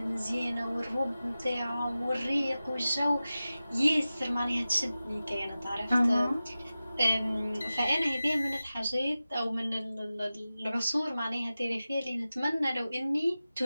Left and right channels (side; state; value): both; inverted; correlation -0.95